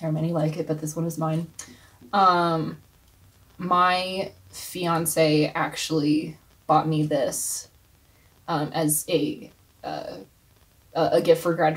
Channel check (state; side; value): identical; both; correlation 1.00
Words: are many like it, but this one is mine. My fiance actually bought me this as a gift for